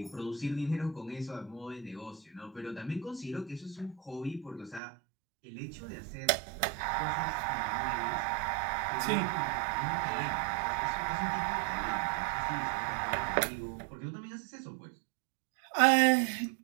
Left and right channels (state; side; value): drops out; left; at 4.8 s